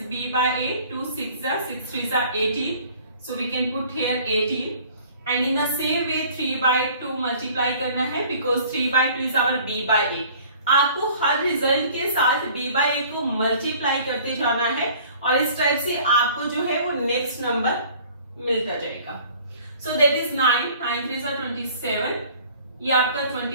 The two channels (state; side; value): inverted; both; correlation -0.51